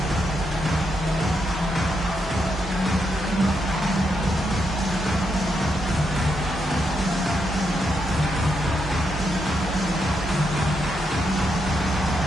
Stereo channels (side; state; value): both; normal; correlation 0.81